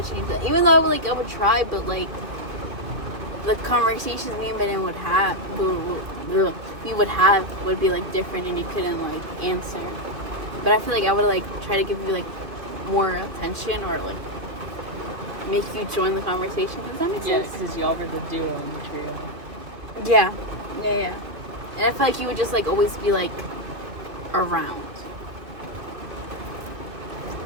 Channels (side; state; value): left; late; 2.4 ms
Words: change that. Even though I would try, but like, the conversations me and Belen would have, would be like different, and you couldn't like answer. But I feel like I would like try to give you like more attention, or like make you join the conversation. Does that make sense? Yeah, because y'all were the duo in the trio. Yeah. And I feel like you would just like always be like around.